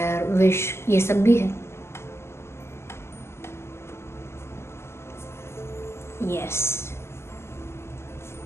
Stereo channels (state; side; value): late; right; 0.12 ms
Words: विश, ये सब भी है। यस,